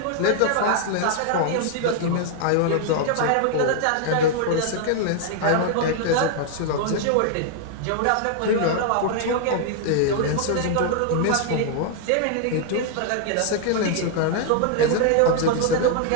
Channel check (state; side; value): different; both; correlation 0.00